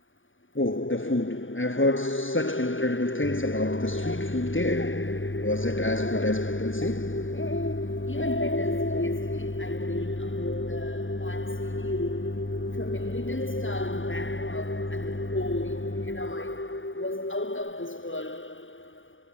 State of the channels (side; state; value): right; late; 0.57 ms